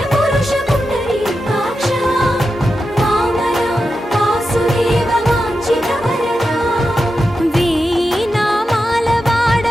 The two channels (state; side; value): normal; both; correlation 0.90